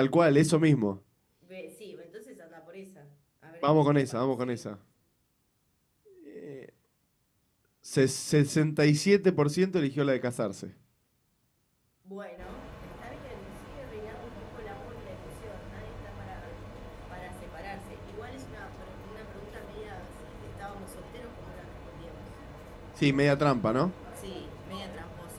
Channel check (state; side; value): identical; both; correlation 1.00